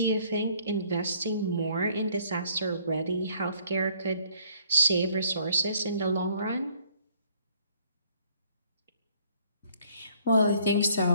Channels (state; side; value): inverted; both; correlation -0.62